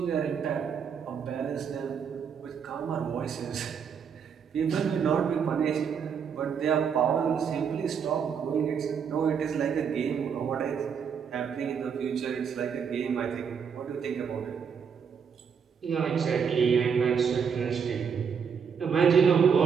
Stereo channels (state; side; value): quieter; left; 6.8 dB